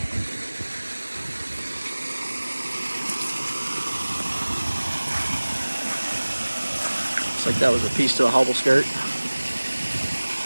Looks like that was a piece to a hobble skirt.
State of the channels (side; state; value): both; inverted; correlation -1.00